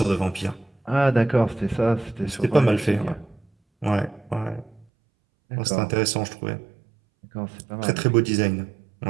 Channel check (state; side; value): drops out; left; at 4.9 s